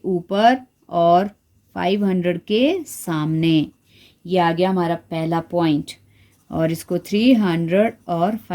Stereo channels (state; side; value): identical; both; correlation 1.00